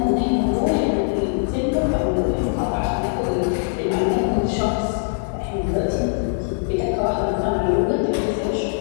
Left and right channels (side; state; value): right; silent; digital silence